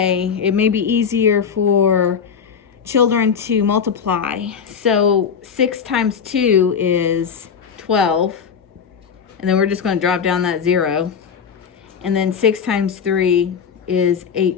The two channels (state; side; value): quieter; right; 6.8 dB